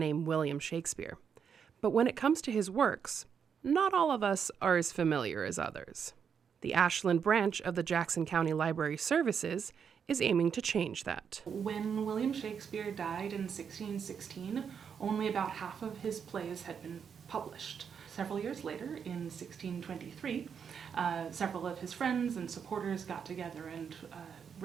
William Shakespeare. But when it comes to his works, not all of us are as familiar as others. The Ashland branch of the Jackson County Library Services is aiming to change that. When William Shakespeare died in 1616, only about half of his plays had been published. Several years later, in 1623, several of his friends and supporters got together and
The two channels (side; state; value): left; quieter; 7.1 dB